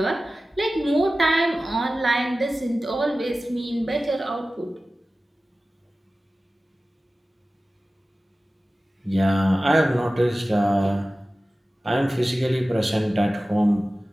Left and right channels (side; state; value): both; normal; correlation 0.96